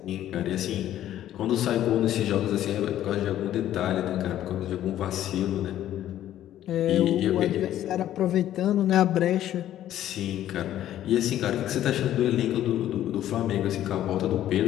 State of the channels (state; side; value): quieter; right; 12.3 dB